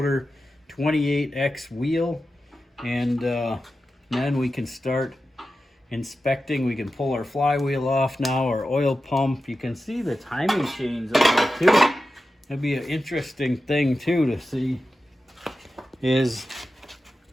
28X wheel, and then we can start inspecting. We can pull our flywheel off now, our oil pump. You can see the timing chains on it too. That'd be an interesting thing too to see, is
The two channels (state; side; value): normal; both; correlation 0.92